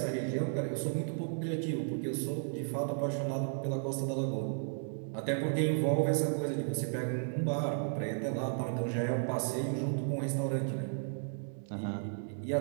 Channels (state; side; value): silent; left; digital silence